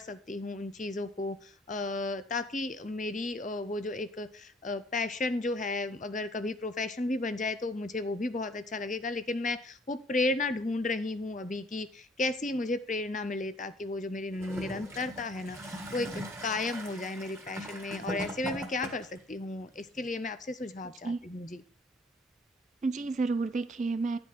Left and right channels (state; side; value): normal; both; correlation 0.58